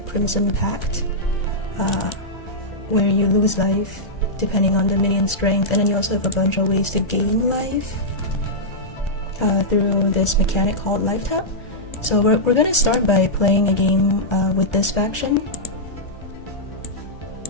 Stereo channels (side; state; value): right; late; 1.3 ms